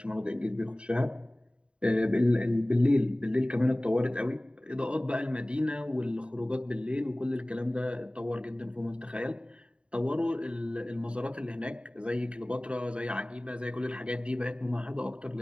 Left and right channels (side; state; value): left; late; 0.054 ms